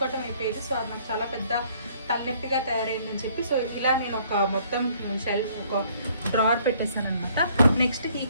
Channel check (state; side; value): inverted; both; correlation -0.62